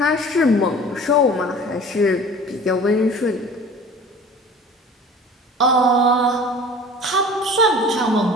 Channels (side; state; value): both; normal; correlation 0.44